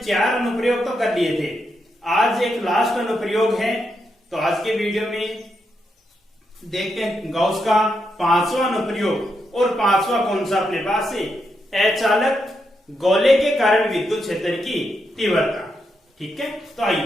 अनुप्रयोग तो कर लिए थे, आज एक लास्ट अनुप्रयोग है। तो आज के वीडियो में देखते हैं गाउस का 5वां अनुप्रयोग। और 5वां कौन सा अपने पास है? अचालक गोले के कारण विद्युत क्षेत्र की तीव्रता। ठीक है, तो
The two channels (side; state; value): both; normal; correlation 0.83